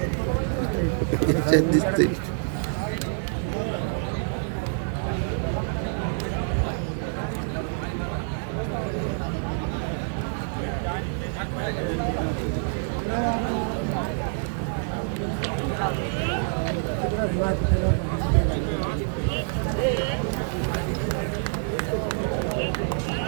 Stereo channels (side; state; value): left; silent; 59 dB below the other